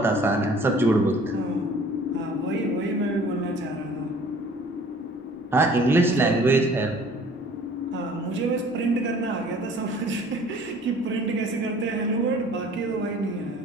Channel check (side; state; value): both; normal; correlation 0.51